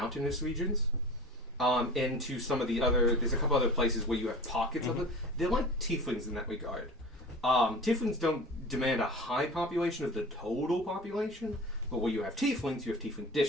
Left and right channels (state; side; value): normal; both; correlation 0.38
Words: regions. Into some of the other. There's a couple other places where you have pockets of it. They're like tieflings in that regard. Tieflings don't demand a high population of the total population, but where you have tiefling